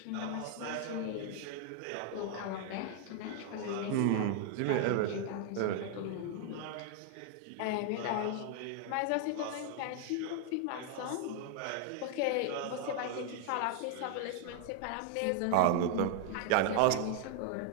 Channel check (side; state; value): both; different; correlation 0.00